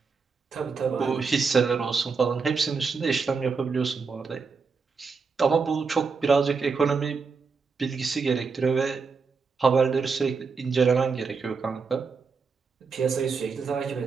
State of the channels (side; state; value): left; quieter; 5.0 dB